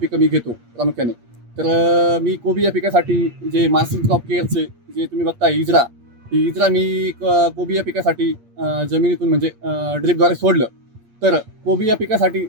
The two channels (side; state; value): left; late; 8.6 ms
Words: मी घेतो प्रामुख्याने. तर मी कोबी या पिकासाठी जे मार्सिन क्रॉप केअरचे जे तुम्ही बघताय इजरा, ही इजरा मी कोबी या पिकासाठी जमिनीतून म्हणजे ड्रिपद्वारे सोडलं. तर कोबी या पिकासाठी